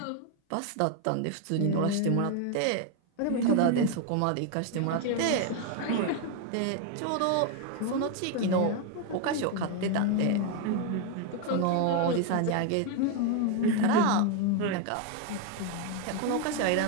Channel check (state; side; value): different; both; correlation 0.01